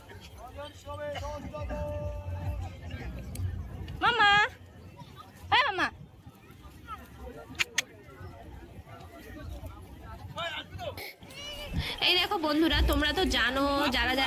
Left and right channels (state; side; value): identical; both; correlation 1.00